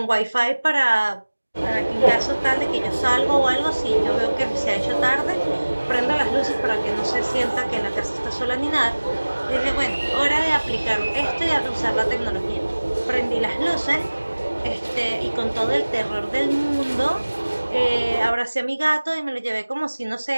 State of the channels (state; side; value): inverted; both; correlation -1.00